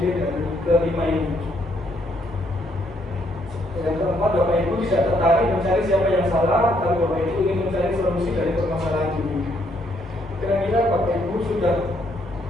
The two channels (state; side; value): normal; both; correlation 0.71